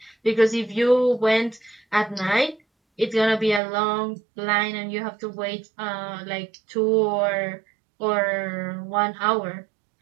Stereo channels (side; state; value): left; drops out; at 3.6 s